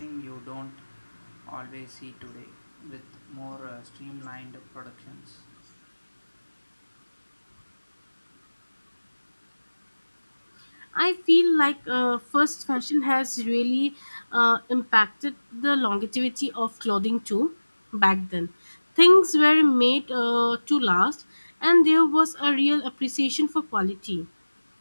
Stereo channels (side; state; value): both; inverted; correlation -1.00